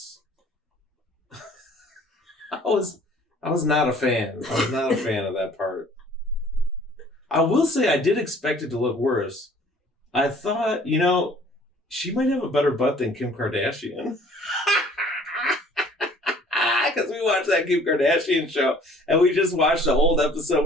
I was not a fan. I was not a fan of that part. I will say I did expect it to look worse. I thought, she might have a better butt than Kim Kardashian. Because we watched that Kim Kardashian show, and we just watched the old episode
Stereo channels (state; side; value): normal; both; correlation 0.54